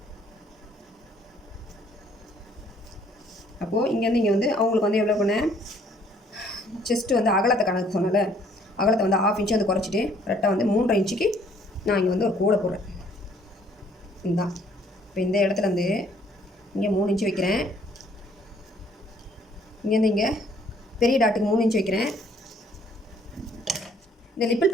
அப்போது இங்கேருந்து இங்கே வந்து அவங்களுக்கு வந்து எவ்வளோ பண்ணேன், செஸ்ட்டு வந்து அகலத்தை கணக்கு சொன்னால அகலத்தை வந்து 1/2 இன்ச்சு வந்து குறைச்சிட்டு கரெக்டாக வந்து 3.5 இன்ச்சுக்கு நான் இங்கே வந்து ஒரு கோடை போடுறேன். இதுதான். இப்போ இந்த இடத்துல வந்து இங்கே 3 இன்ச்சு வைக்கிறேன். இங்கேருந்து இங்கே பெரிய டாட்டுக்கு 3 இன்ச்சு வைக்கிறேன். இந்த லிப்பிள்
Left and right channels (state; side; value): normal; both; correlation 0.62